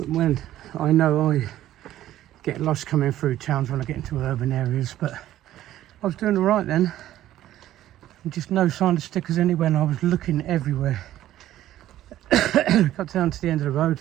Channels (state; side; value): quieter; left; 13.3 dB